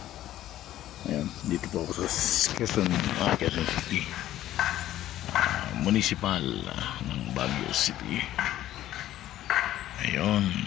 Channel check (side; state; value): right; quieter; 13.5 dB